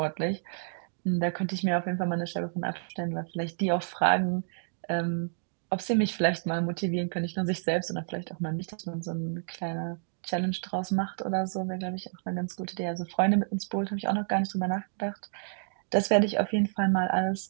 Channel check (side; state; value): left; silent; digital silence